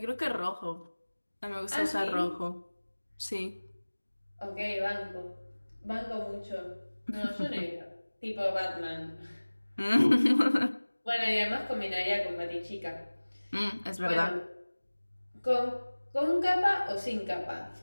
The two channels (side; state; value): both; inverted; correlation -1.00